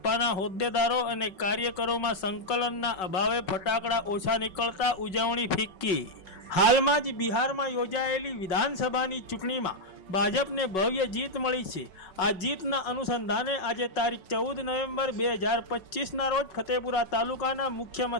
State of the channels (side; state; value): right; late; 5.3 ms